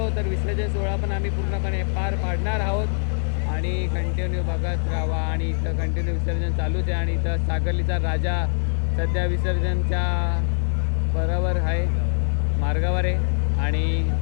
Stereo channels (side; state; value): right; silent; digital silence